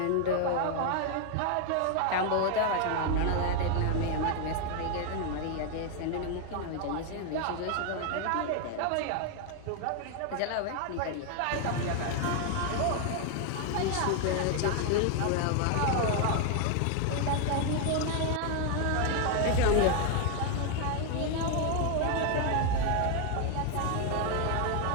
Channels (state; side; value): different; both; correlation 0.01